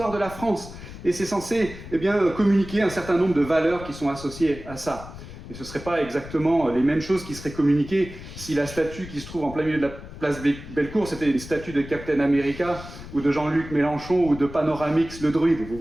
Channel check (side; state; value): left; noise; rumble, 13 dB below the sound